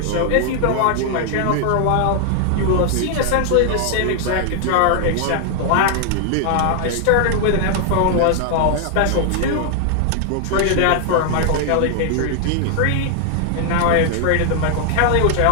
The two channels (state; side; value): different; both; correlation 0.00